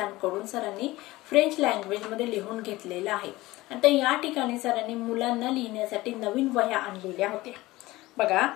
सरांनी फ्रेंच लँग्वेज मध्ये लिहून घेतलेला आहे. आता या ठिकाणी सरांनी मुलांना लिहिण्यासाठी नवीन वह्या आणलेल्या होत्या. बघा,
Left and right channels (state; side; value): quieter; right; 19.0 dB